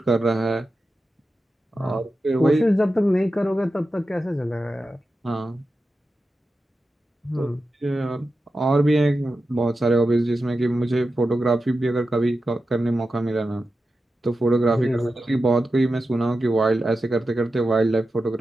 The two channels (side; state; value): both; normal; correlation 0.91